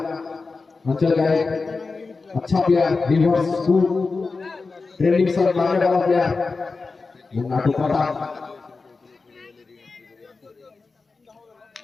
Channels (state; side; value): quieter; right; 4.1 dB